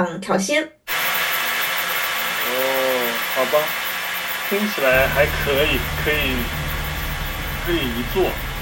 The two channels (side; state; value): both; identical; correlation 1.00